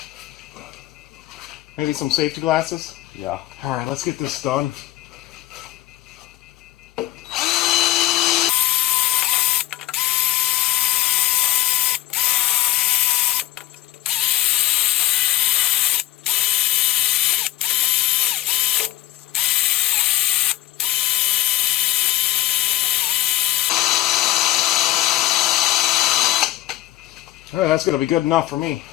Maybe some safety glasses? Yeah. Alright, let's get this done. Alright, that's going to be good enough for me.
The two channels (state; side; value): quieter; right; 15.4 dB